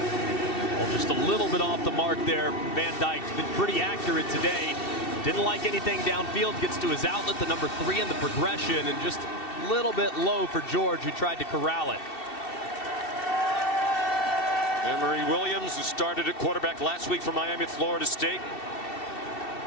Just a little bit off the mark there. Van Dyke's been pretty accurate today. Didn't like anything downfield. Gets to his outlet, the number 3 in the progression, and just a little bit low for George, who tried to corral it. Emory Williams, who started at quarterback last week for Miami at Florida State.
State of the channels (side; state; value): right; late; 2.7 ms